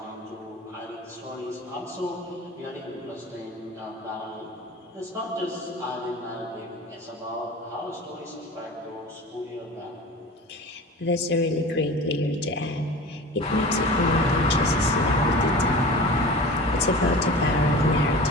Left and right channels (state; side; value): normal; both; correlation 0.36